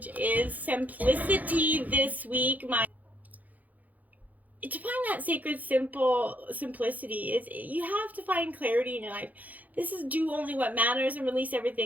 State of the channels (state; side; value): late; left; 0.080 ms